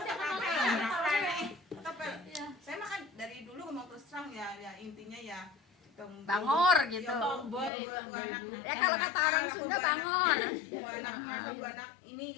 tepel saya makan dari dulu mau terus terang ya intinya ya Bangor gitu. Ya kalau kata orang Sunda bangor. anak ini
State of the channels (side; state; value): right; drops out; at 7.7 s